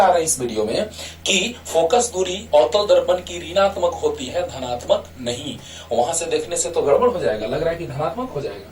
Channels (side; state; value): both; identical; correlation 1.00